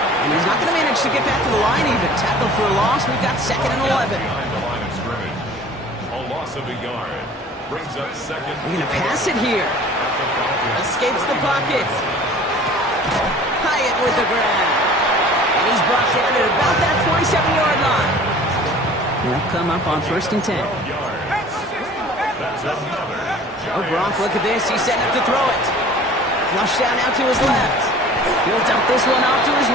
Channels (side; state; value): both; normal; correlation 0.47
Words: And he's not going to manage to get back to the line even. Tackle for a loss. We've got 2nd and 11. Behind the line of scrimmage. A loss of a yard. Brings up 2nd. They're going to pass it here. Escapes the pocket. Hyatt with the grab. And he's brought down at about that 27-yard line. They'll come up on 1st and 10. Oh, Brock, look at this. He's setting up to throw it. Flush down out to his left. He'll dump this one off to his